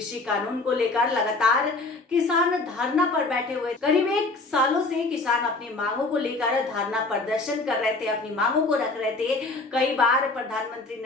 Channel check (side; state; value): right; quieter; 3.3 dB